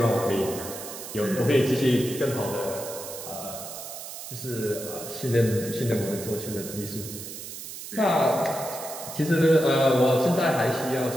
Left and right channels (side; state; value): right; noise; hiss, 10 dB below the sound